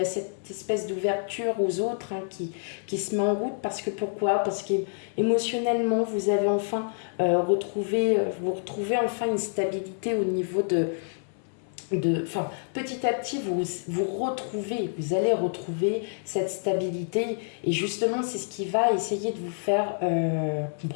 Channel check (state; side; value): silent; right; 60 dB below the other